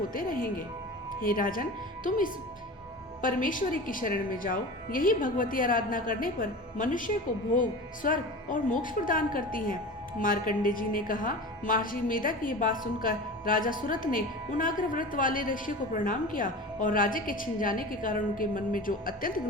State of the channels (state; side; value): normal; both; correlation 0.33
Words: रहेंगे। हे राजन, तुम इस परमेश्वरी की शरण में जाओ। यही भगवती आराधना करने पर मनुष्य को भोग, स्वर्ग और मोक्ष प्रदान करती हैं। मार्कंडे जी ने कहा, महर्षि मेधा की ये बात सुनकर राजा सुरथ ने उन अग्रव्रत वाले ऋषि को प्रणाम किया और राज्य के छिन जाने के कारण उनके मन में जो अत्यंत